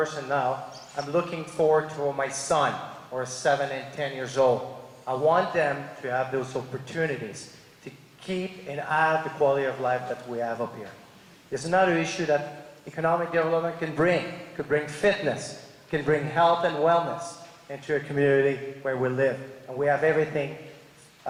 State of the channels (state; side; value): identical; both; correlation 1.00